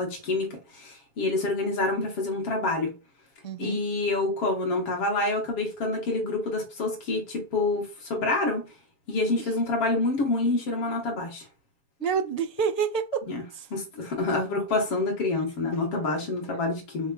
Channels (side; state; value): right; late; 7.3 ms